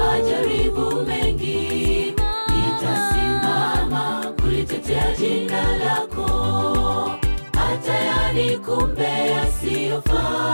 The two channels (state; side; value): inverted; both; correlation -1.00